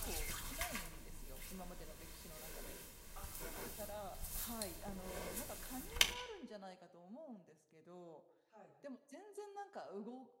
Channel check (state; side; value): identical; both; correlation 1.00